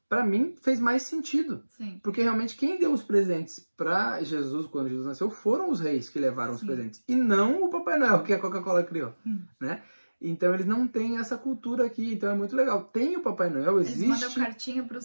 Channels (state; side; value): inverted; both; correlation -1.00